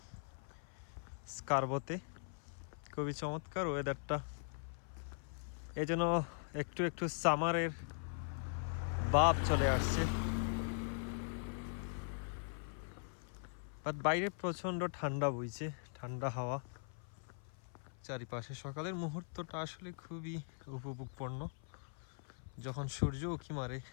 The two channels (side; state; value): right; silent; 50 dB below the other